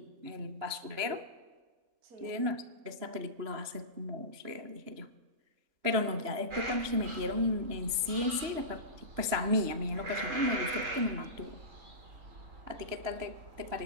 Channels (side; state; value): left; late; 3.0 ms